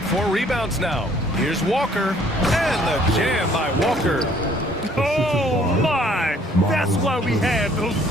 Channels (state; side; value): normal; both; correlation 0.60